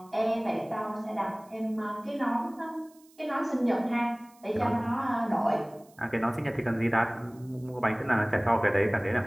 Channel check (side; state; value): right; noise; hiss, 29 dB below the sound